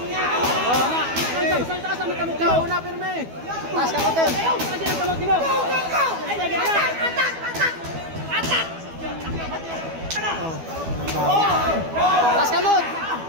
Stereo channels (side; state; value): left; late; 12 ms